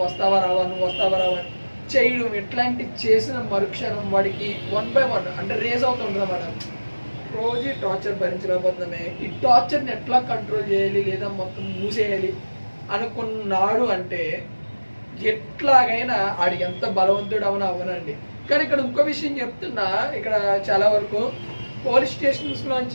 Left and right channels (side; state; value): both; inverted; correlation -1.00